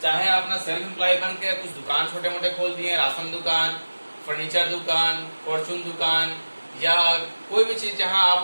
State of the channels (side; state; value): both; inverted; correlation -1.00